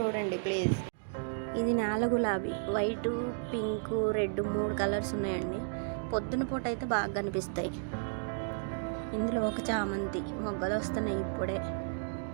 ప్లీజ్. ఇది నేల గులాబీ, వైటు పింకు రెడ్ 3 కలర్స్ ఉన్నాయండి. పొద్దున పూట అయితే బాగా కనిపిస్తాయి. ఇందులో ఒక చామంతి మొగ్గలు వస్తున్నాయి ఇప్పుడే.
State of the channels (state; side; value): silent; left; digital silence